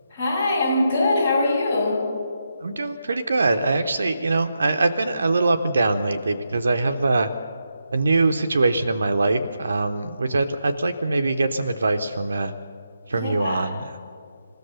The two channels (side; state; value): both; inverted; correlation -0.85